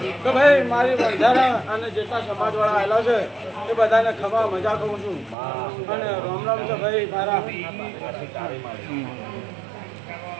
તો ભાઈ મારી બંધારા અને જેટલા સમાજવાળા આવેલા છે એ બધાને ખમા મજા કહું છું અને રામ રામ છે ભાઈ મારા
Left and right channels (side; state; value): left; drops out; at 5.4 s